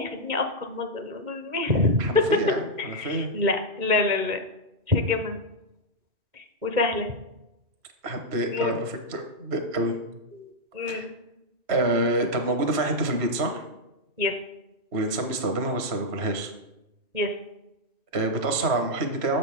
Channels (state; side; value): late; left; 3.0 ms